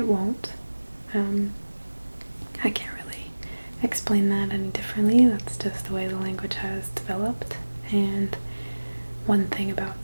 won't. I can't really explain that any differently. That's just the way the language has developed. And one thing about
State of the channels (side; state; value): both; inverted; correlation -1.00